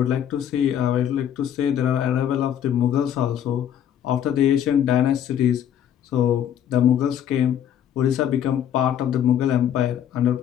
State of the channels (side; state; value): right; quieter; 9.8 dB